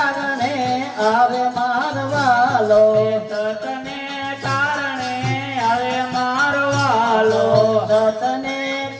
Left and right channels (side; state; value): both; identical; correlation 1.00